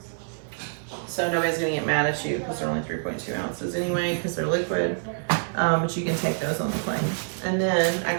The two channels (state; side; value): silent; left; digital silence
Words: So nobody's gonna get mad at you because they're only 3.2 ounces anyway, because they're liquid. But you can take those on the plane. And then I